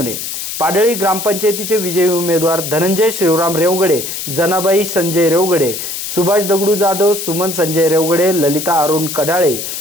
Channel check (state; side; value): noise; left; hiss, 6 dB below the sound